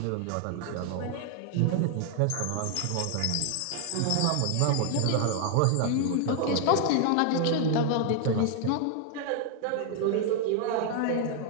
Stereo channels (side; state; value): both; different; correlation 0.00